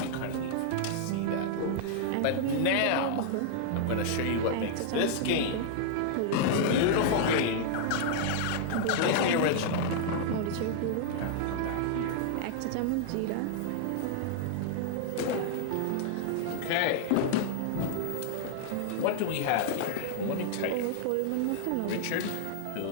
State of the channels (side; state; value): both; different; correlation -0.01